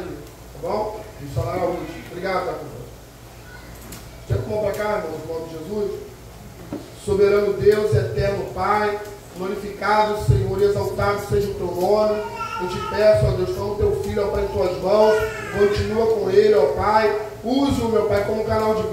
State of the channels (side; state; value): both; identical; correlation 1.00